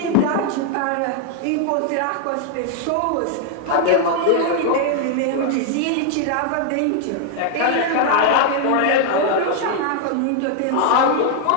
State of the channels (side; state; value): both; different; correlation 0.00